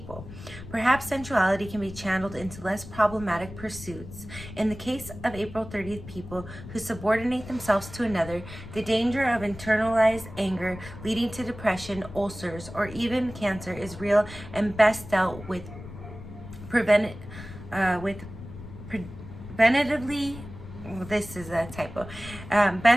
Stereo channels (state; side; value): noise; left; rumble, 14 dB below the sound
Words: Perhaps sensuality can be channeled into less problematic pursuits. In the case of April 30th people who subordinate themselves to another, the danger of internalized anger leading to depression, ulcers, or even cancer is real and best dealt with preventatively. This is a typo.